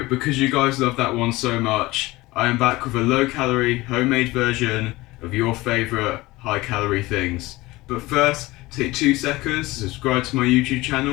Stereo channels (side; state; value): right; quieter; 20.0 dB